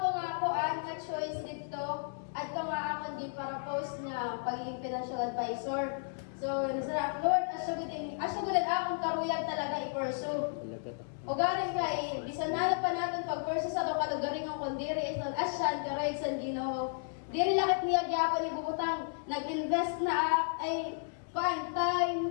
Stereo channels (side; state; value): right; silent; digital silence